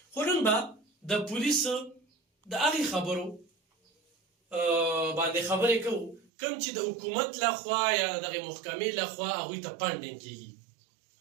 خو نن به د پولیسو د هغې خبرو باندې خبرې کوو کوم چې د حکومت لخوا یا دغې محکمې لخوا هغوی ته فنډینګ کېږي.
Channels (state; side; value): drops out; left; at 6.2 s